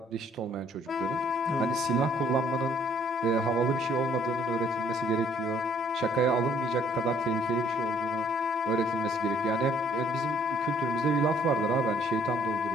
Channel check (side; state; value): both; normal; correlation 0.62